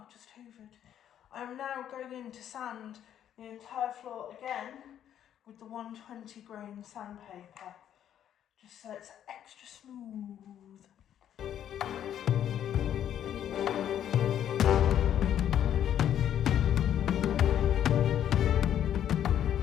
just hoovered. I'm now going in to sand the entire floor again with the 120 grain sandpaper, just so it's extra smooth.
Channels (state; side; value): quieter; right; 10.3 dB